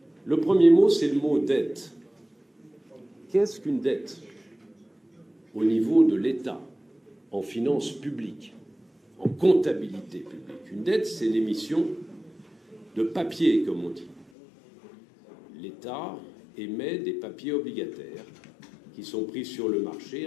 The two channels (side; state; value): right; drops out; at 14.3 s